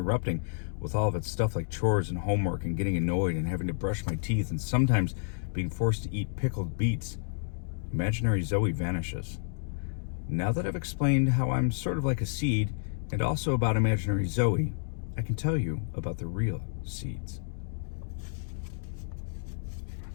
with all of its stuff like chores and homework and getting annoyed and having to brush my teeth and sometimes being forced to eat pickled beets, imaginary Zoe vanishes. Now that I've explained how I'm sort of like a seed and also about imaginary Zoe, I can tell you about the real seeds.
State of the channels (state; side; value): silent; right; digital silence